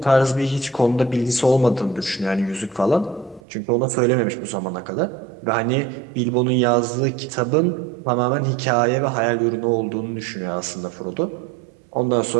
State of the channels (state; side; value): drops out; left; at 3.4 s